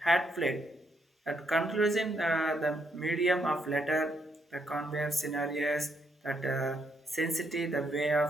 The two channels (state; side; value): normal; both; correlation 0.75